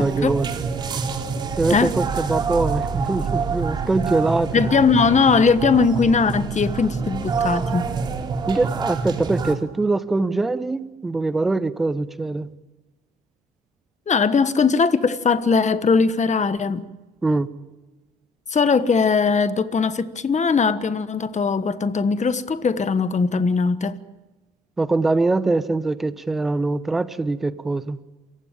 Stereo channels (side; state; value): both; normal; correlation 0.63